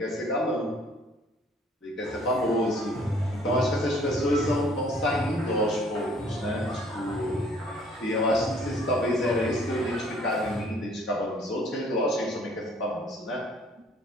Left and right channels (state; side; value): normal; both; correlation 0.58